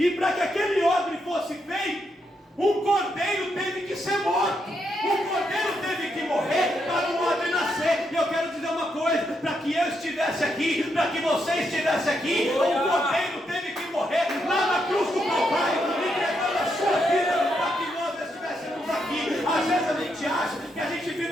para que aquele odre fosse feito, um cordeiro teve que ser morto. Um cordeiro teve que morrer para o odre nascer. E eu quero dizer uma coisa: para que eu estivesse aqui, para que você estivesse aqui, um cordeiro teve que morrer lá na cruz do Calvário, entregando a sua vida para que nós estivéssemos aqui. Às vezes a gente acha que a gente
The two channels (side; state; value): both; normal; correlation 0.80